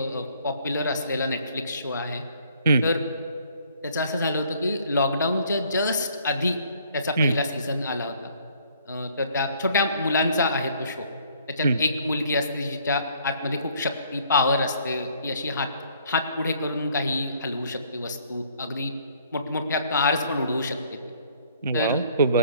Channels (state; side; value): inverted; both; correlation -0.61